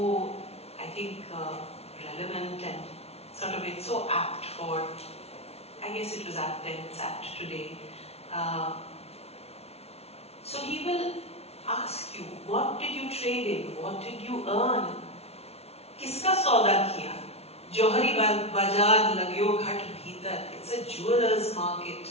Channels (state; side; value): late; right; 0.30 ms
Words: I think, relevant and sort of it's so apt for, I guess it was apt then, it's apt today. So he will ask you, what did you trade in? What did you earn? Kiska sauda kiya? Johari bazaar lagyo ghat bhitar. It's a jeweller's market.